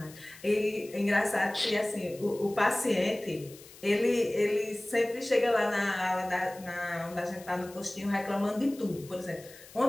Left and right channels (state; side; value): noise; left; hiss, 20 dB below the sound